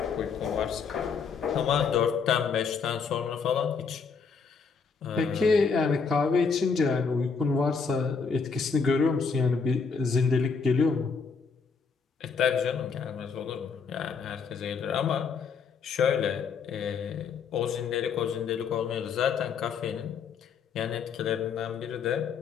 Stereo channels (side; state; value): right; quieter; 5.6 dB